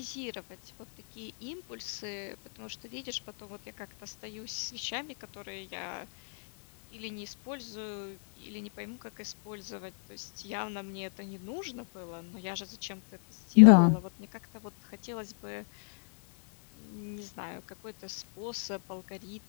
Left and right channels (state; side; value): silent; right; 55 dB below the other